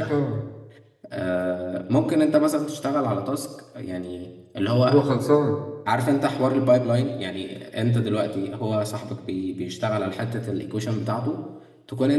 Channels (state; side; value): identical; both; correlation 1.00